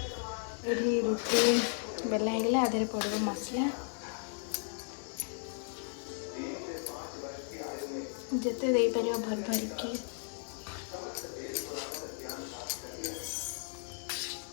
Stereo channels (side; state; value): right; silent; 54 dB below the other